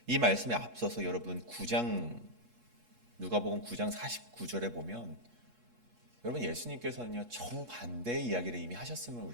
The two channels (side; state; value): left; late; 8.3 ms